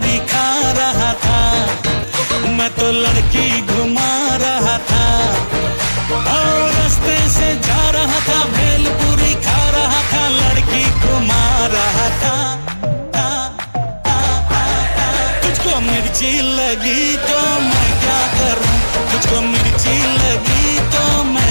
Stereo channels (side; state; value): both; inverted; correlation -1.00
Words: खा रहा था, मैं तो लड़की घुमा रहा था। और रास्ते से जा रहा था, भेलपुरी खा रहा था, लड़की घुमा रहा था। तुझको मिर्ची लगी तो मैं क्या करूं, तुझको मिर्ची लगी तो